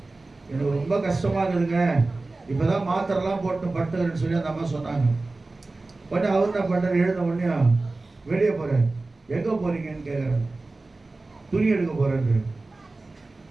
எனக்கு ரொம்ப கஷ்டமா இருக்குதுங்க, இப்பதான் மாத்திரெல்லாம் போட்டு படுத்துக்கிறேன்னு சொல்லி அந்த அம்மா சொன்னாங்க. உடனே அவர் என்ன பண்றாரு, எழுந்த உடனே வெளியே போறாரு. எங்க போறீங்கன்னு கேட்கிறாரு. துணி எடுக்க போறேன்னு.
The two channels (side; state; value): left; quieter; 3.3 dB